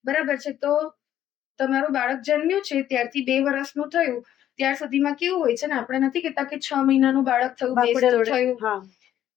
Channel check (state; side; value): quieter; right; 11.5 dB